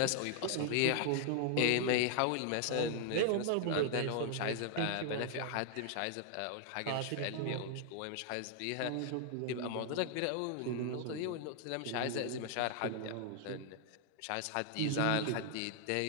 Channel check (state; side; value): different; both; correlation 0.00